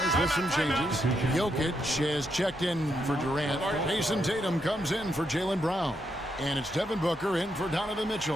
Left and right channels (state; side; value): normal; both; correlation 0.80